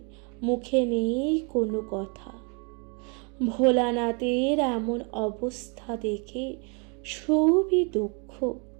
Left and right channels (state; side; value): quieter; left; 35.2 dB